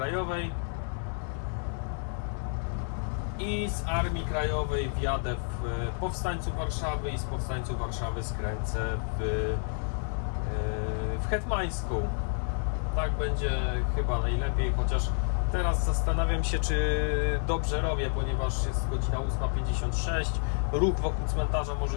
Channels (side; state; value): right; silent; 58 dB below the other